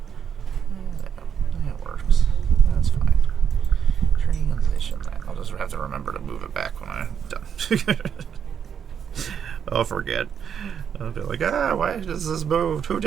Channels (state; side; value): quieter; left; 7.8 dB